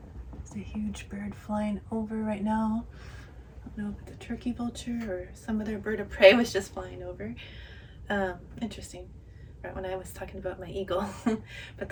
there's a huge bird flying over right now. I don't know if it's a turkey vulture or some other bird of prey was just flying over. Interesting, right when I was talking about my eagle. But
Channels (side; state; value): both; identical; correlation 1.00